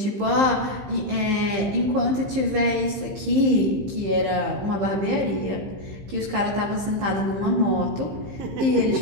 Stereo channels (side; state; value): left; late; 15 ms